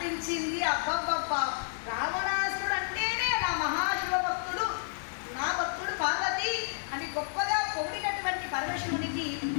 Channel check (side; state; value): right; silent; digital silence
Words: అబ్బబ్బబ్బ, రావణాసురుడు అంటేనే నా మహాశివ భక్తుడు, నా భక్తుడు పార్వతి అని గొప్పగా పొగిడినటువంటి పరమశివునికి